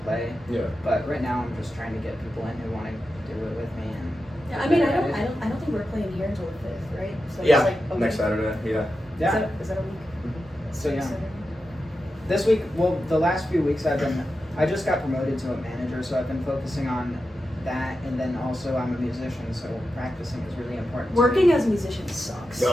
play. Yeah. But right now I'm just trying to get people in who want to do it with me. And Yeah, I mean, I don't think we're playing here until the 5th, right? So Yeah. It's like a Next week. Saturday. Yeah. Yeah. Is that a week? So yeah. Saturday? This week, well, the last few weeks I just got promoted to a manager, so I've been focusing on that, and then also I'm a musician, so practicing is really important. to Working me. as a musician sucks.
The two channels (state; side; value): normal; both; correlation 0.90